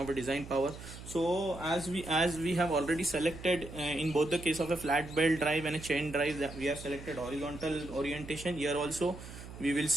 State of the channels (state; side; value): noise; right; hum, 13 dB below the sound